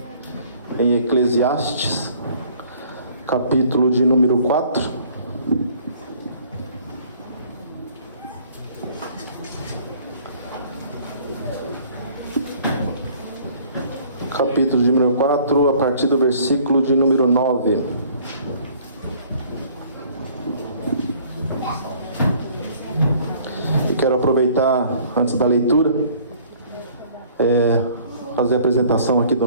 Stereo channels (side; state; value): both; inverted; correlation -0.56